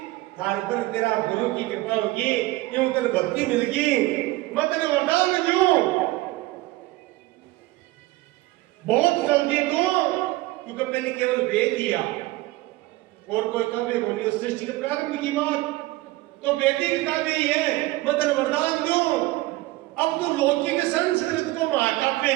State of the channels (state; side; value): quieter; left; 19.1 dB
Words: थार पर तेरा गुरु की कृपा होगी, यूं तेरे भक्ति मिलेगी, मैं तेरे वरदान दूं बहुत जल्दी दूं, क्योंकि पहले केवल वेद दिया और कोई काव्य को नहीं, सृष्टि के प्रारंभ की बात तो वैदिक काव्य ही है, मैं तेरे वरदान दूं। अब तो लौकिक संस्कृत को महाकाव्य